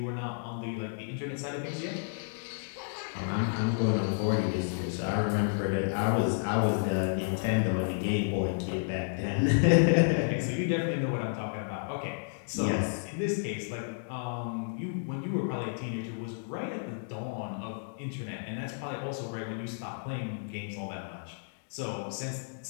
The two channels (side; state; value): right; silent; digital silence